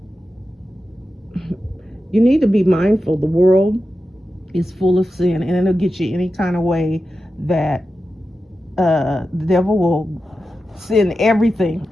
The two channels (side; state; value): both; normal; correlation 0.91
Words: You need to be mindful. The world is full of sin, and it'll get you any kind of way that the devil will send everything